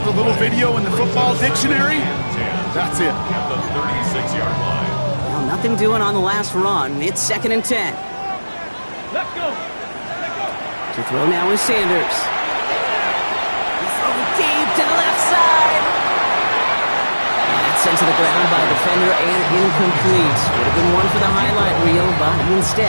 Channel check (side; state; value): both; inverted; correlation -1.00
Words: the little video in the football dictionary? That's it. At the 36-yard line. Well, nothing doing on the last run. It's second and 10. Let's go. To throw now is Sanders. He's throwing deep to the left side. That's sent to the ground by a defender and incomplete. Would have been one for the highlight reel, but